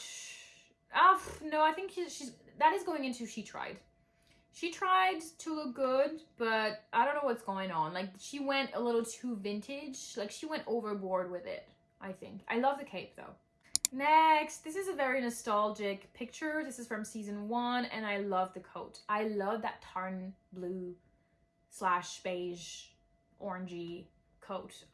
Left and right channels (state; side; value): identical; both; correlation 1.00